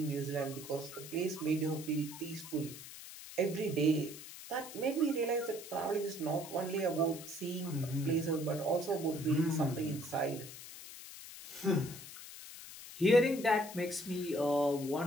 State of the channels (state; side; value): noise; left; hiss, 13 dB below the sound